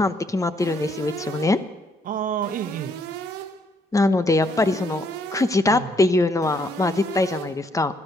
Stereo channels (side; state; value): both; normal; correlation 0.70